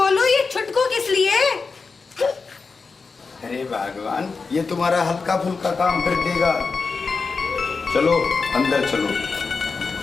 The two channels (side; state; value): right; quieter; 4.6 dB